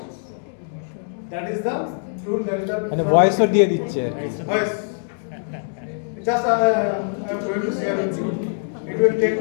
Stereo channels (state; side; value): silent; right; digital silence